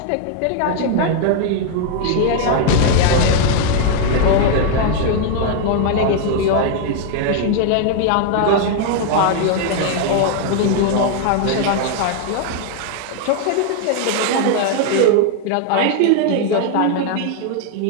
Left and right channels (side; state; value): both; different; correlation 0.00